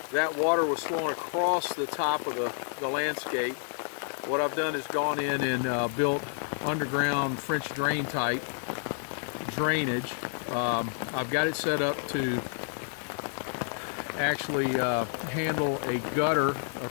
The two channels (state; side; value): silent; right; 58 dB below the other